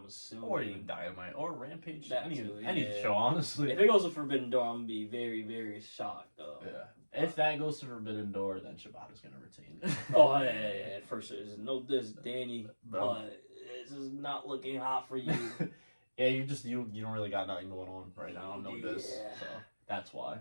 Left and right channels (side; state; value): both; inverted; correlation -1.00